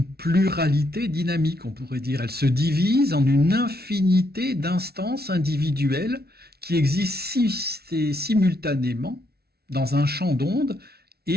pluralité dynamique, on pourrait dire. Elle se divise en une infinité d'instances individuelles qui existent simultanément dans un champ d'ondes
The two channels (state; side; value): late; left; 0.45 ms